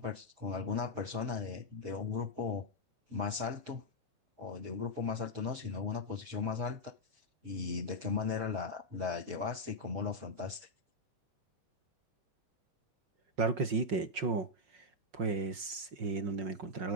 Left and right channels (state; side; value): late; left; 5.6 ms